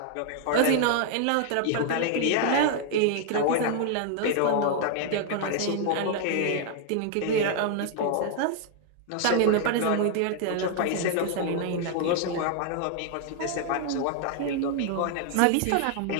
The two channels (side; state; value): both; different; correlation 0.00